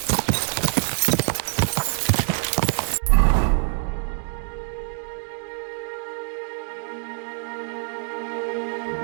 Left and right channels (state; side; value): silent; left; 62 dB below the other